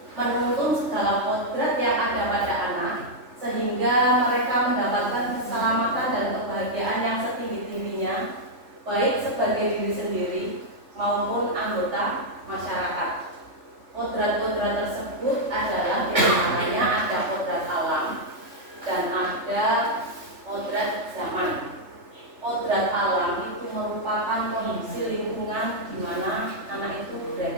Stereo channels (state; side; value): late; left; 3.4 ms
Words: menuntun segala kodrat yang ada pada anak, sehingga mereka mendapatkan keselamatan dan kebahagiaan yang setinggi-tingginya, baik sebagai diri sendiri maupun anggota masyarakat. Kodrat-kodrat tersebut adalah diantaranya ada kodrat alam dan ada kodrat zaman. Kodrat alam itu merupakan kondisi lingkungan di mana anak itu